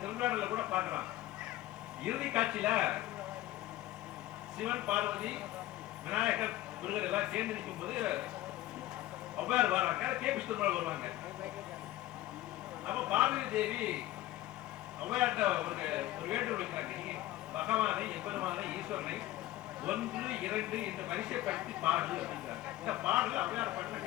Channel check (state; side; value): quieter; right; 15.8 dB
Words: திருவிழாவில் கூட பாடுறான். இறுதி காட்சியில சிவன், பார்வதி, விநாயகர், முருகர் எல்லாம் சேர்ந்து நிற்கும் போது ஔவையார் வராங்க, கே.பி. சுந்தரமால் வருவாங்க. அப்ப பார்வதி தேவி ஔவையார்ட்ட ஒரு வேண்டுகோள் வைக்கிறாங்க, பகவானை, எம்பெருமானை, ஈஸ்வரனை 1, 2 இந்த வரிசைப்படுத்தி பாடு அப்படிங்கிறாங்க. இந்த பாடல் ஔவையார் பாடல